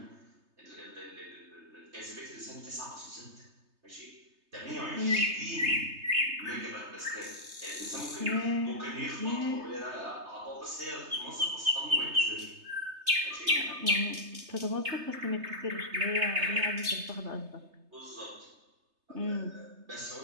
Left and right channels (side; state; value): left; late; 3.3 ms